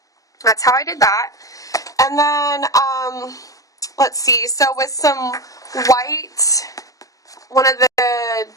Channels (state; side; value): late; right; 0.17 ms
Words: that's how I did that. And then, let's see, so with some white, one of the